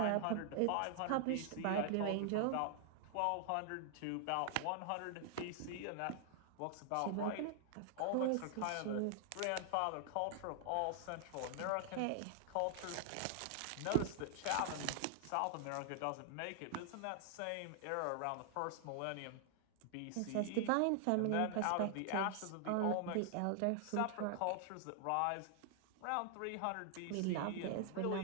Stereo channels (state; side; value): different; both; correlation 0.00